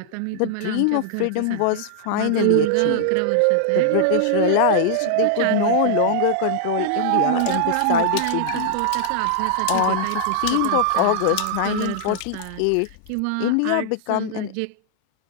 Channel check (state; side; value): different; both; correlation -0.01